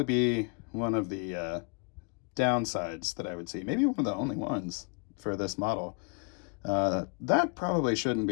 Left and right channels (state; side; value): quieter; right; 37.2 dB